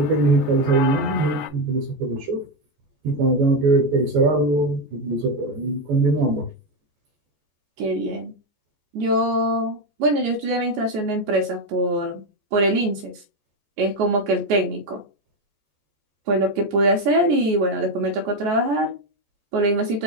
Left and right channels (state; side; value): late; left; 14 ms